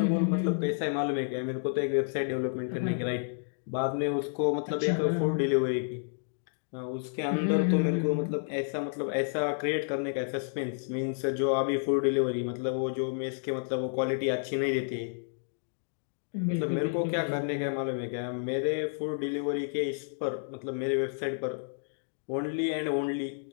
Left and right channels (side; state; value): right; silent; digital silence